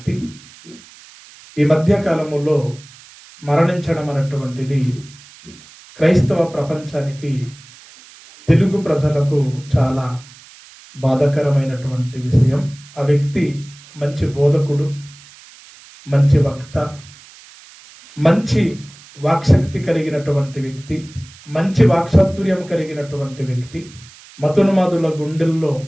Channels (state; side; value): noise; right; hiss, 22 dB below the sound